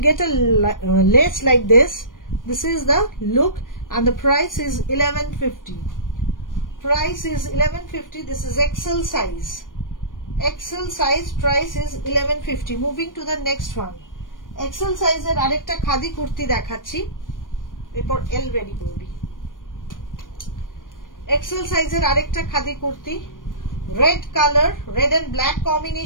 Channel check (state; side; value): late; right; 0.89 ms